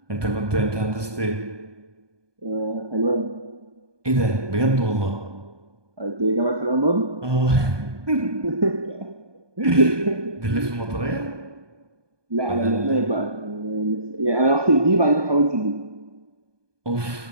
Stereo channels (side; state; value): left; late; 1.2 ms